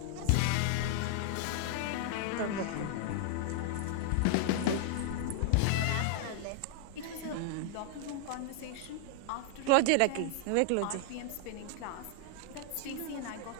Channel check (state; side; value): different; both; correlation 0.00